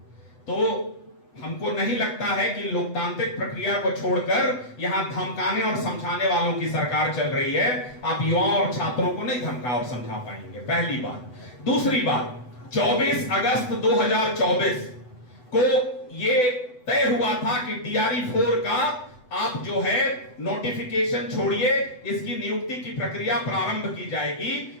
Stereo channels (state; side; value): late; right; 8.0 ms